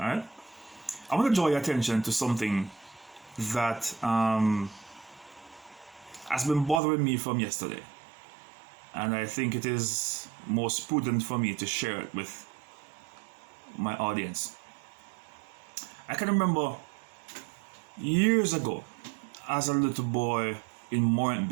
right? I want to draw your attention to something that has been bothering me from yesterday. And I think it is most prudent for me to share it with my audience. I can remember years ago, as a little boy in Morant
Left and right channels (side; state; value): left; drops out; at 6.8 s